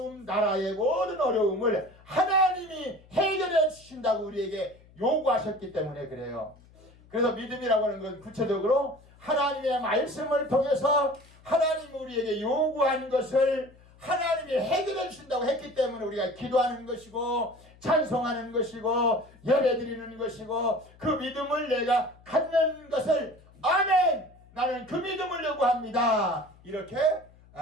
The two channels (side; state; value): left; noise; hum, 26 dB below the sound